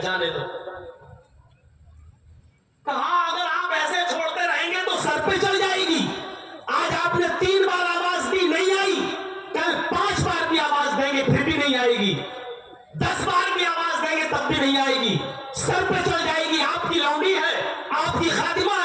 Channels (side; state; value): both; identical; correlation 1.00